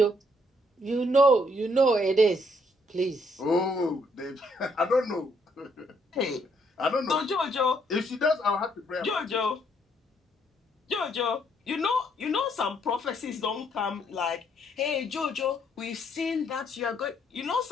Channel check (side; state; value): both; normal; correlation 0.70